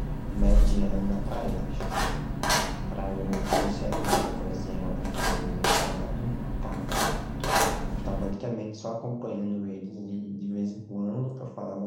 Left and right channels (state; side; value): identical; both; correlation 1.00